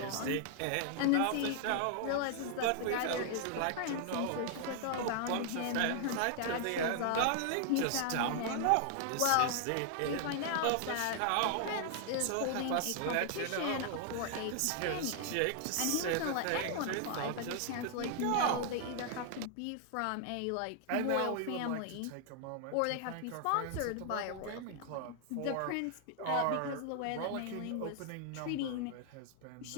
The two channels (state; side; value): different; both; correlation 0.00